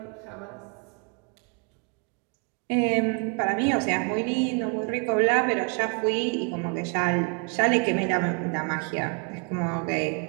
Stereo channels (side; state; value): left; quieter; 35.8 dB